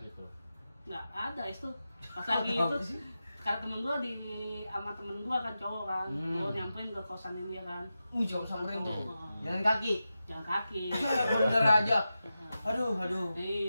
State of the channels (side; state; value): both; inverted; correlation -0.92